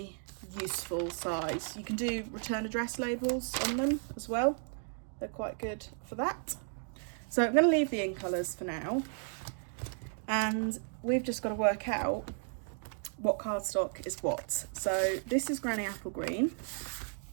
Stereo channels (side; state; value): left; silent; 55 dB below the other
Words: useful size. You can do return address labels on them as well. They're quite good for that. So I'm going to leave the in colours for now, and we've just got to work out what cardstock is what. So this is Granny Apple Green,